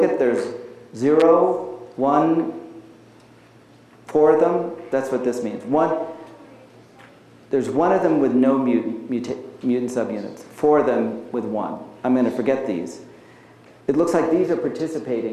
at, there's 0, 1, 4 of them. That's what this means. There's one of them with no mutant subunits, 4 of them with 1. I'm going to forget these. It looks like these are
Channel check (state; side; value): identical; both; correlation 1.00